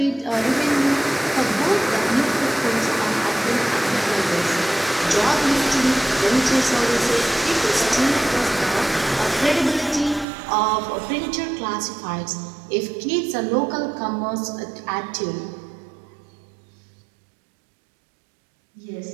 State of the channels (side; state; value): left; drops out; at 10.2 s